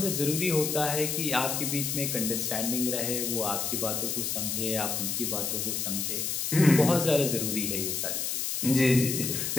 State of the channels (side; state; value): left; noise; hiss, 1 dB below the sound